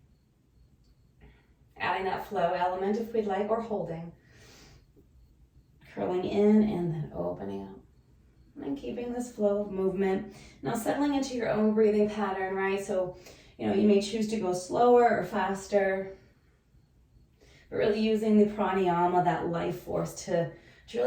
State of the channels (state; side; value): identical; both; correlation 1.00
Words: Adding that flow element if we'd like, or holding. Curling in and then opening up. And keeping this flow of movement. Now settling into your own breathing pattern, right? So, you may choose to go slower or faster. But really using the pranayama, that life force, to